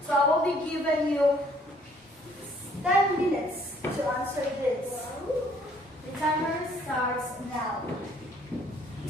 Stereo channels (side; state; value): both; normal; correlation 0.61